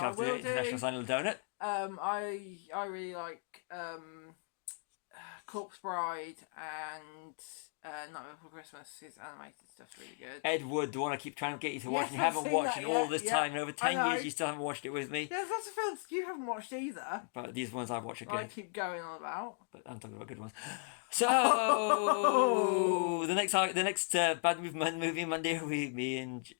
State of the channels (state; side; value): silent; right; 54 dB below the other